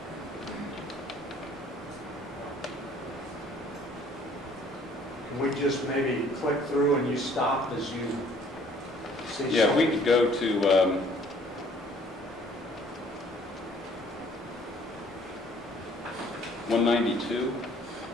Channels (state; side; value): normal; both; correlation 0.58